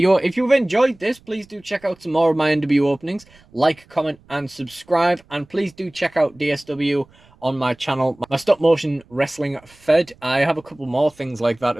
If you've enjoyed this, please do check out some more of my NW openings. Like, comment, and subscribe. And please do check out DSW on my channel, my stop motion wrestling fed. I have a couple more things like that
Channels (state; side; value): noise; right; rumble, 29 dB below the sound